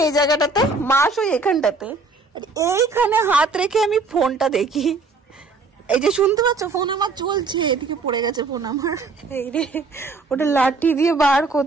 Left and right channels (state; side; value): quieter; left; 3.9 dB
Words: এই জায়গাটাতে, মা শুই এখানটাতে, এইখানে হাত রেখে আমি ফোনটা দেখি। এই যে শুনতে পাচ্ছ, ফোন আমার চলছে, এদিকে পড়ে গেছে ফোন আমার। এই রে, ওটা লাঠি দিয়ে বার